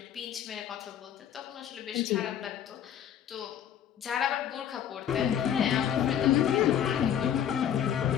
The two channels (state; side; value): quieter; right; 9.5 dB